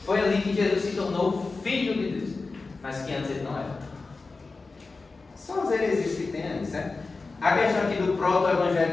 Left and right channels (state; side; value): quieter; right; 3.9 dB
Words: Foi ali que Jesus se tornou filho de Deus, mas que antes ele não era. São as heresias que tem ali, certo? A questão aqui do